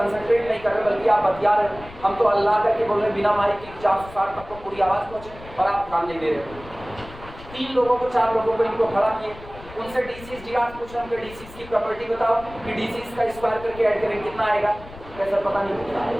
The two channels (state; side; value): noise; left; rumble, 18 dB below the sound